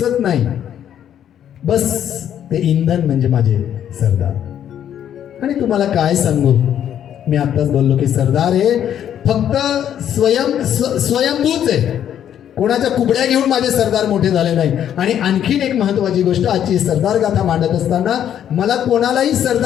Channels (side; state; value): right; quieter; 10.0 dB